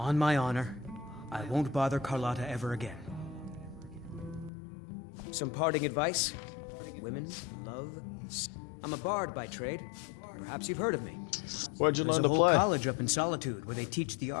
my honor, I won't bother Carlotta ever again. Some parting advice? Women, love... I'm a bard by trade. Perhaps you've heard of me. Where'd you learn to There's a play? whole college up in Solitude where they teach the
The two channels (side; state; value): right; drops out; at 4.5 s